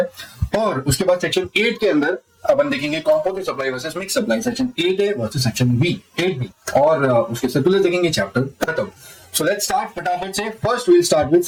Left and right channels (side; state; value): both; identical; correlation 1.00